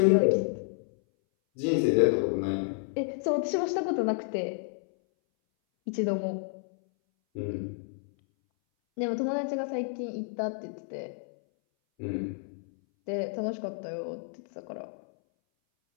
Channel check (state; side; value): silent; right; 58 dB below the other